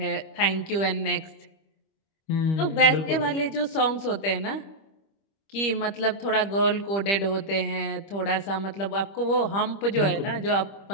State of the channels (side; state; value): right; late; 25 ms